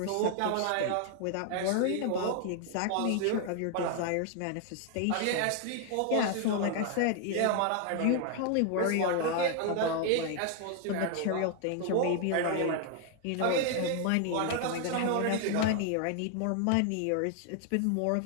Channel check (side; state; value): both; different; correlation 0.00